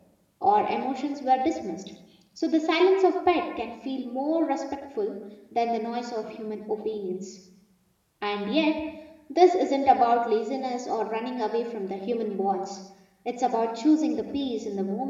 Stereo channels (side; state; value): both; identical; correlation 1.00